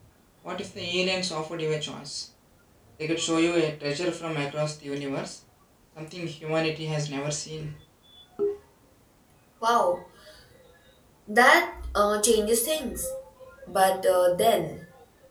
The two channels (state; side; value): identical; both; correlation 1.00